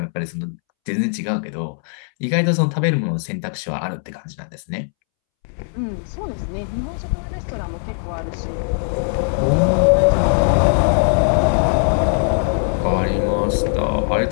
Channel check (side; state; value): right; silent; 66 dB below the other